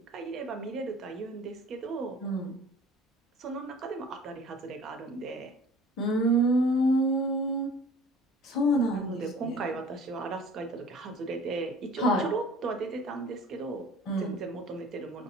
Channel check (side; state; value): both; normal; correlation 0.47